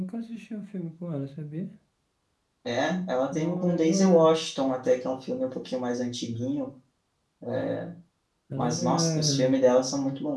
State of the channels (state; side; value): identical; both; correlation 1.00